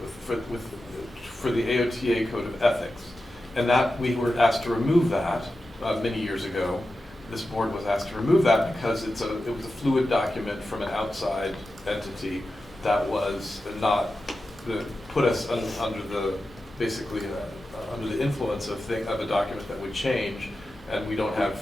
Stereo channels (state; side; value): normal; both; correlation 0.92